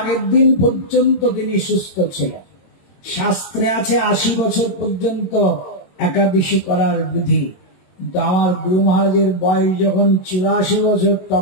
দিন পর্যন্ত তিনি সুস্থ ছিলেন। শাস্ত্রে আছে 80 বছর পর্যন্ত একাদশী করার বিধি। আমার গুরু মহারাজের বয়স যখন 84 বছর,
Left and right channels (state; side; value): late; right; 22 ms